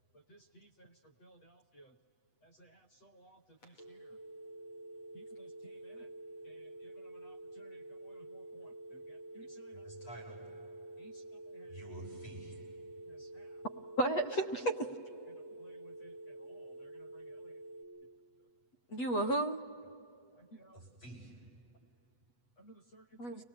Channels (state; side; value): late; right; 8.1 ms